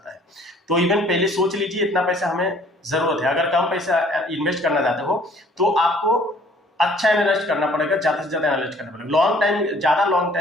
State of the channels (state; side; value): normal; both; correlation 0.57